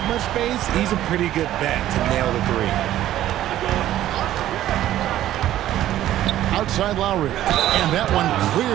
much space, he's a pretty good bet to nail the 3. Outside Lowry. And that one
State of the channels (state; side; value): quieter; left; 13.1 dB